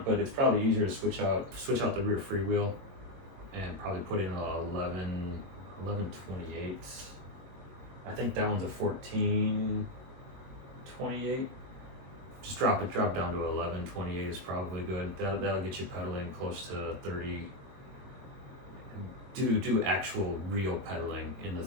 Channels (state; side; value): late; left; 22 ms